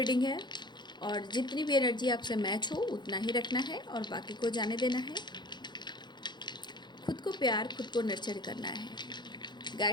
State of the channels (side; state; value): right; late; 0.21 ms